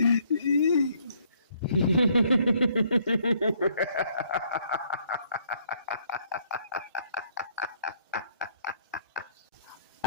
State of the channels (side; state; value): both; inverted; correlation -0.66